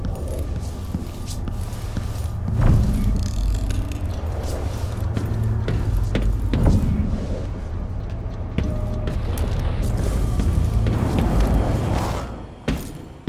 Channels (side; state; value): both; identical; correlation 1.00